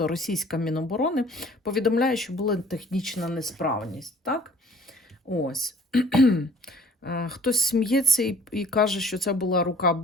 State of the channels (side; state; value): both; normal; correlation 0.53